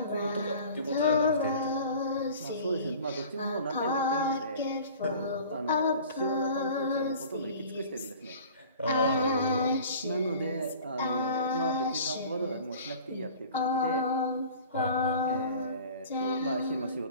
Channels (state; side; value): inverted; both; correlation -0.45